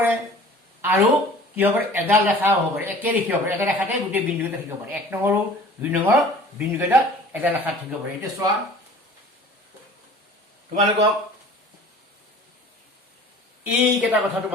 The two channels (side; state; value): both; normal; correlation 0.46